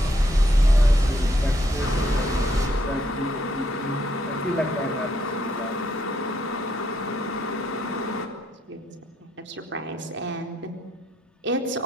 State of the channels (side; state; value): both; normal; correlation 0.74